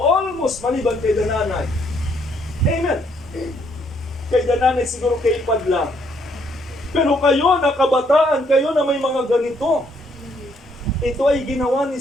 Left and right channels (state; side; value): normal; both; correlation 0.69